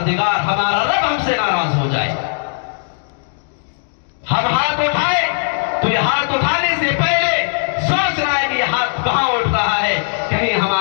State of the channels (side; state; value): right; silent; digital silence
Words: ہمارا رب ہم سے ناراض ہو جائے. ہم ہاتھ اٹھائے تو یہ ہاتھ اٹھانے سے پہلے سوچ رہا ہے کہ یہ ہاتھ کہاں اٹھ رہا ہے، کہیں